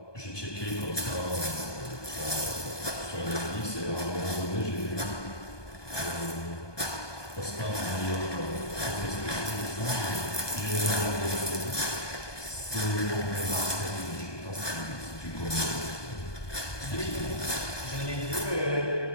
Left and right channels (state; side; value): late; right; 1.2 ms